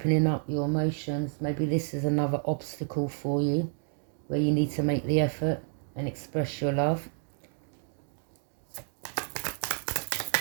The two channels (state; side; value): silent; left; 58 dB below the other